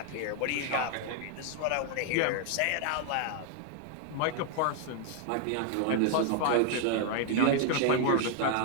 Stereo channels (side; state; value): both; different; correlation 0.00